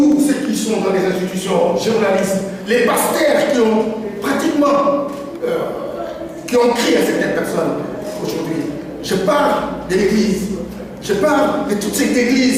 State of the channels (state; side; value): identical; both; correlation 1.00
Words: ceux qui sont dans les institutions, journalistes, les pasteurs qui ont pratiquement qui ont créé à certaines personnes aujourd'hui. Je parle de l'Église. Je parle de toutes ces